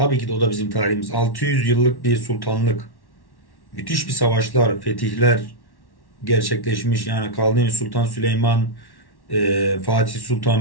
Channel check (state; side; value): late; right; 1.1 ms